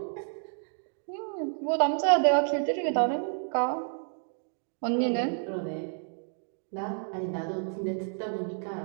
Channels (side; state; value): left; silent; 58 dB below the other